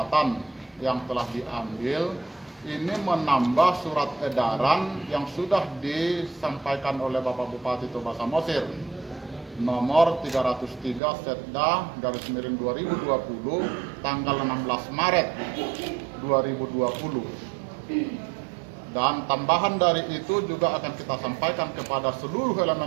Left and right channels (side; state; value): left; drops out; at 11.0 s